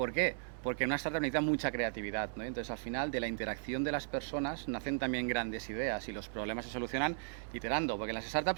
qué? Porque en una startup necesita mucha creatividad, ¿no? Entonces, al final, de la interacción de las personas nacen también grandes ideas y los problemas se solucionan iterando, porque en las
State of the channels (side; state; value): left; silent; digital silence